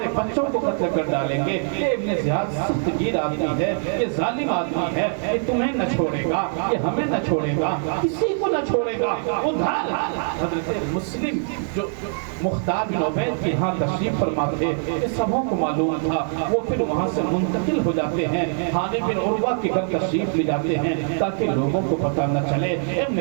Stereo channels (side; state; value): left; silent; 58 dB below the other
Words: بچوں کو قتل کر ڈالیں گے. یہ ابن زیاد سخت گیر آدمی ہے، یہ ظالم آدمی ہے، یہ تمہیں نہ چھوڑے گا. یہ ہمیں نہ چھوڑے گا، کسی کو نہ چھوڑے گا۔ ادھر حضرت مسلم جو مختار بن عبید کے ہاں تشریف فرما تھے، یہ سبوں کو معلوم تھا، وہ پھر وہاں سے منتقل ہو جاتے ہیں، ہانی بن عروہ کے گھر تشریف لے جاتے ہیں تاکہ لوگوں کو پتہ نہ چلے۔ ابن